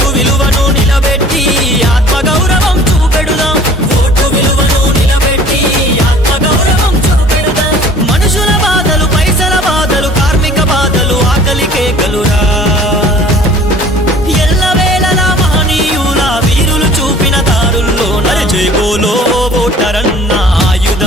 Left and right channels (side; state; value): both; normal; correlation 0.49